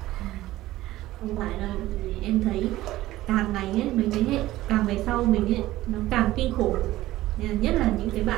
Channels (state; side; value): quieter; left; 16.1 dB